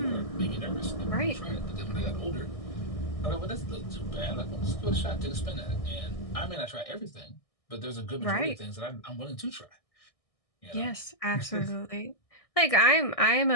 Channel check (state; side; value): late; right; 1.6 ms